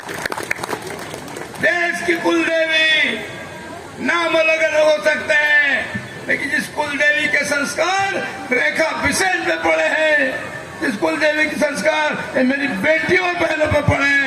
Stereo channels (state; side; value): identical; both; correlation 1.00